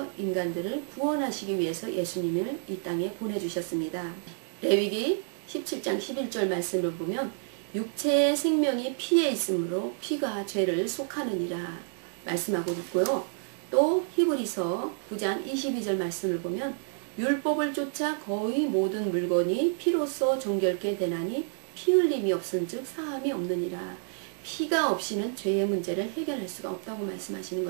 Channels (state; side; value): silent; left; 58 dB below the other